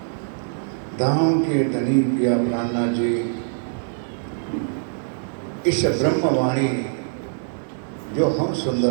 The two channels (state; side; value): silent; left; digital silence